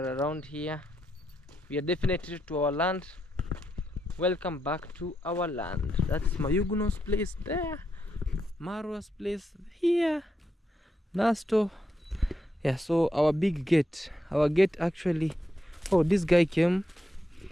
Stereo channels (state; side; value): normal; both; correlation 0.82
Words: around here. We are definitely to our land. Welcome back to our land. That's Mayuguno's place there. Marwa's place here. Nasto. Yeah, so our big gate. Our gate actually. Oh, this guy came